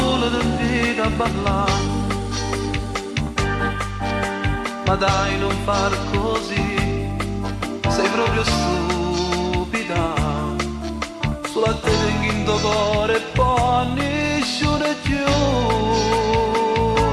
ti invita a parlare, ma dai non far così, sei proprio stupida, sulla te tengo in tuo cuore e poi nessuno più.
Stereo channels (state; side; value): identical; both; correlation 1.00